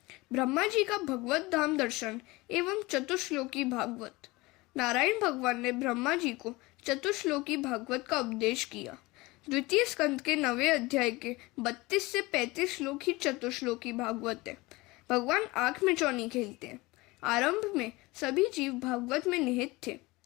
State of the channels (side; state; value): right; quieter; 22.1 dB